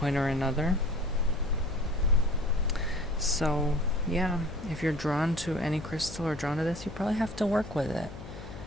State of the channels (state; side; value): noise; left; hum, 13 dB below the sound